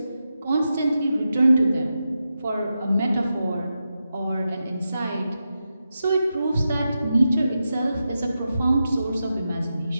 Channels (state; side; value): inverted; both; correlation -0.89